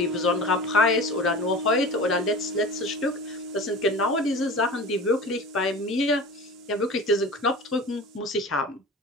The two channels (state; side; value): normal; both; correlation 0.35